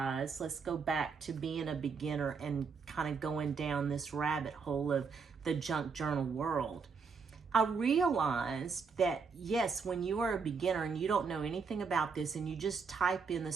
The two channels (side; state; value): left; quieter; 5.4 dB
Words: let's go back to being a beginner and kind of going down this rabbit hole of the junk journal world. I realized that, yes, when you are a beginner and you don't know anything about this, and you just type in the